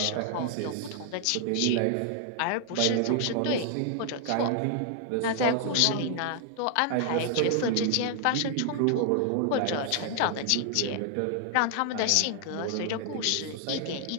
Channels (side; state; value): both; different; correlation 0.00